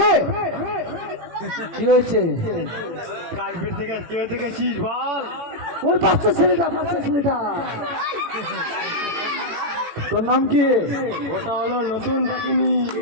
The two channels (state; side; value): late; left; 18 ms